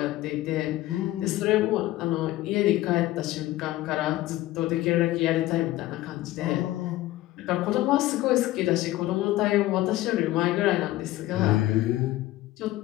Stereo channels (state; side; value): quieter; right; 16.3 dB